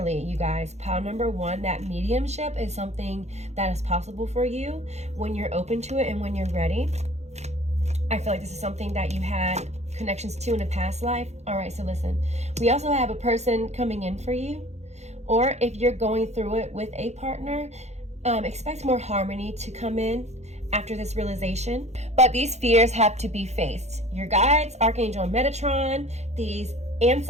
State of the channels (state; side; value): late; left; 0.32 ms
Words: you guys, pile number 1, that mediumship is something that is possible for you when you're open to it and when you're ready. I feel like this is something that you had connections to in a past life. All right, so listen, we also have a person coming in for you, or if you're going through it with a partner, expect more harmony to come in after this realization. But these fears have to be faced. Your guides, Archangel Metatron, these